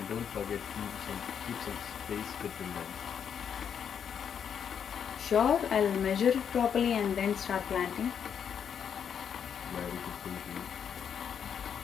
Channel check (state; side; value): quieter; right; 7.8 dB